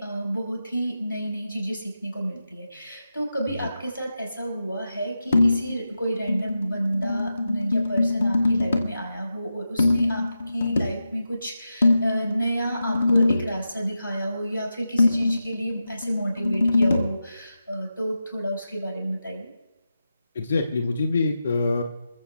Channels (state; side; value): inverted; both; correlation -0.90